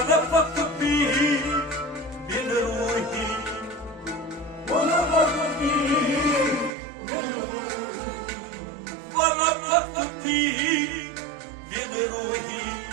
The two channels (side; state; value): left; drops out; at 6.7 s